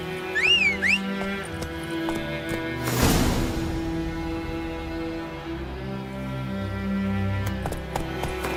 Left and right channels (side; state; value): both; identical; correlation 1.00